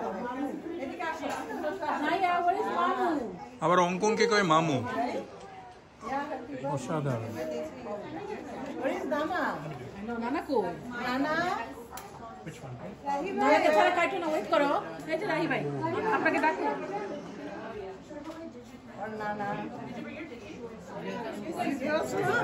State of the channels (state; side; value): identical; both; correlation 1.00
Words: আবার অঙ্কনকে কয় মামু। অসাধারণ। Which one? ওয়েট করো, এই যে রাহি ভাই আপনাকে ডাকো।